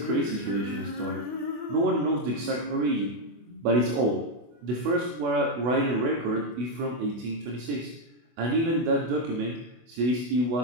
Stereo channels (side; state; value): left; late; 24 ms